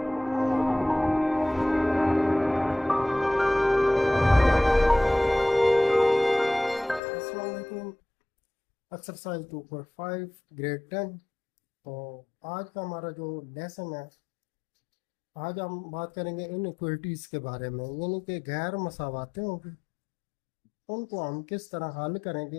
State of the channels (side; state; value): right; drops out; at 7.0 s